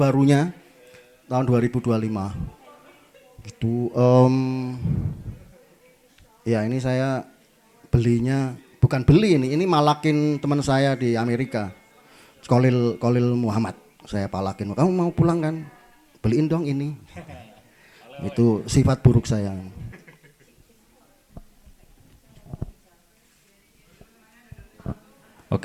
tahun 2025. Gitu. Ya ini saya belinya bukan beli ini malakin teman saya di Amerika. Kolil Muhammad. Saya palakin, kamu mau pulang kan? Beliin dong ini. Itu sifat buruk saya.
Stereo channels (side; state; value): both; identical; correlation 1.00